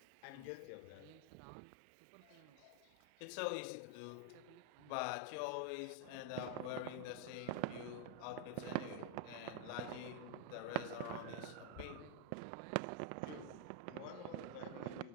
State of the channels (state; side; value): different; both; correlation 0.00